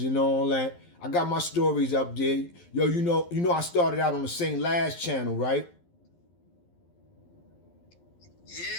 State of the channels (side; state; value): right; late; 11 ms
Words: and all that. I got my stories up there. Yo, you know I started out on the St. Laz channel, right?